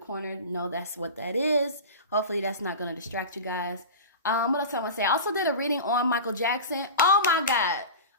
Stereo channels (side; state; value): both; inverted; correlation -0.30